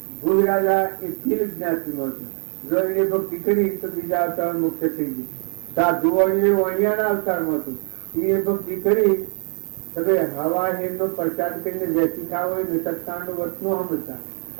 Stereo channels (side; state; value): left; silent; 62 dB below the other